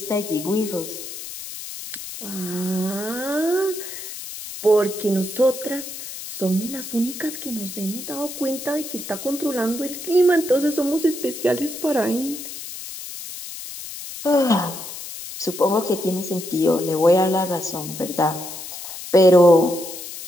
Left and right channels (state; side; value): noise; left; hiss, 10 dB below the sound